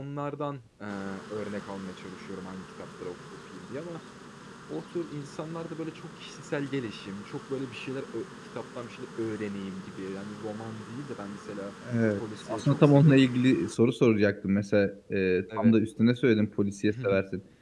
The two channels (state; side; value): identical; both; correlation 1.00